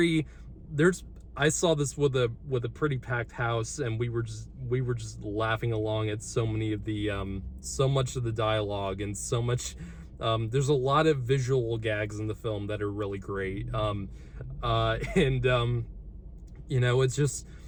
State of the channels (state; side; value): identical; both; correlation 1.00